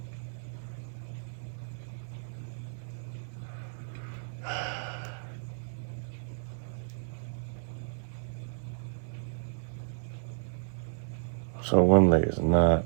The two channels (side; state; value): left; silent; digital silence